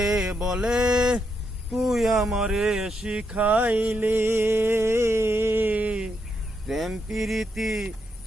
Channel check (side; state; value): both; normal; correlation 0.80